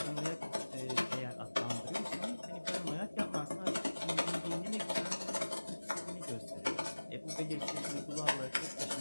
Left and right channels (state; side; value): inverted; both; correlation -1.00